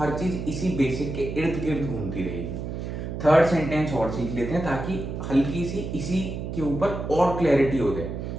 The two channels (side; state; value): right; noise; hum, 6 dB below the sound